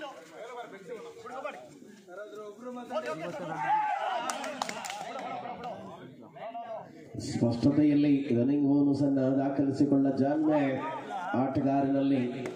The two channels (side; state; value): both; identical; correlation 1.00